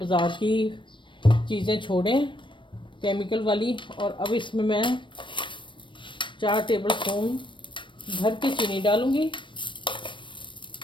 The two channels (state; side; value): late; right; 0.24 ms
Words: की चीज़ें छोड़ें केमिकल वाली। और अब इसमें मैं 4 टेबल स्पून भर के चीनी डालूँगी,